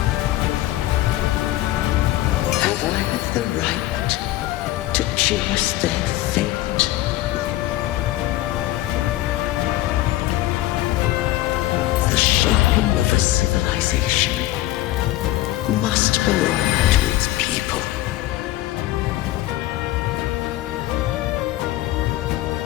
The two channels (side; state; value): right; quieter; 15.9 dB